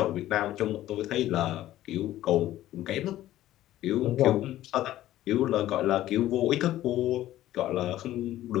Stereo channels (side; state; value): right; quieter; 14.1 dB